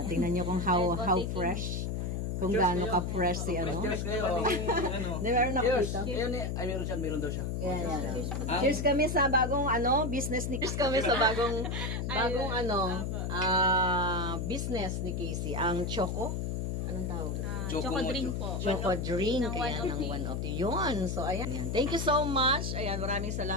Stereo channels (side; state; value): left; noise; hum, 2 dB below the sound